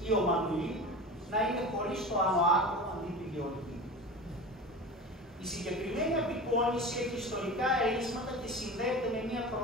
ή ο Μανουλή να είναι χωρίς το άνω άκρο αντί του Γεωργίου. Η συγκεκριμένη απεικόνιση έχει ιστορικά ερίσματα και συνδέεται με μια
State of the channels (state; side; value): normal; both; correlation 0.31